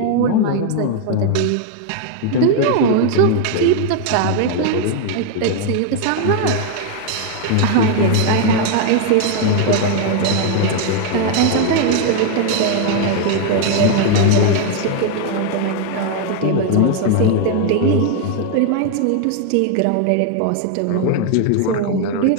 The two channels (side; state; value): both; different; correlation 0.00